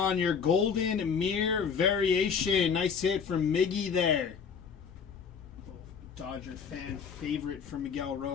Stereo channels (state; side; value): quieter; right; 6.4 dB